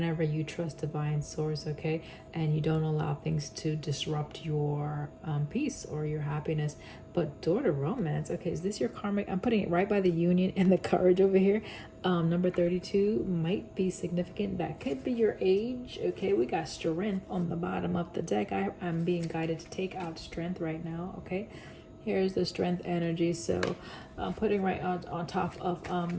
you trust divine source. Okay, and you don't allow things to disrupt your peace or your happiness. But Door to Romance, okay, is this your karmic? I'm putting it right by the Union and the Courage over here. Number 32 might be significant. That could be your age. Okay, we got Strength on the bottom of the deck. I'm being guided to take out Strength right now. Okay, here's the Strength energy. So I'm putting right on top of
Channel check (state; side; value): identical; both; correlation 1.00